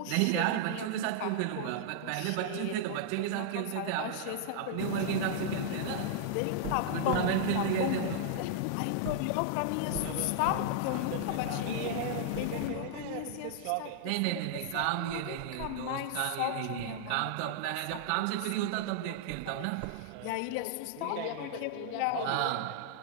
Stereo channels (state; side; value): different; both; correlation -0.01